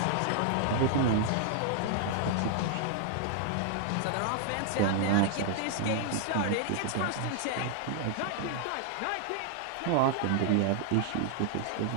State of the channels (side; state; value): both; different; correlation 0.00